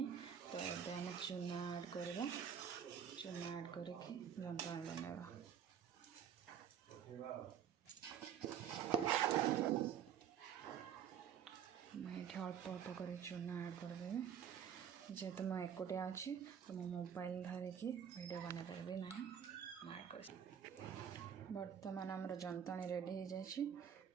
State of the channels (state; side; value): quieter; left; 8.6 dB